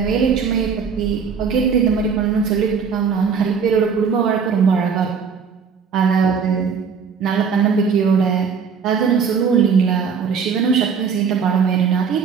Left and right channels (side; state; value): left; quieter; 6.2 dB